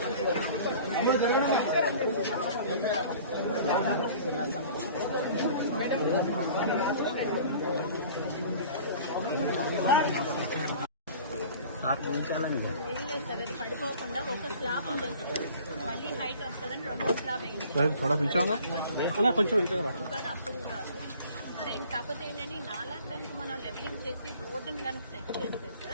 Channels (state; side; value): inverted; both; correlation -0.47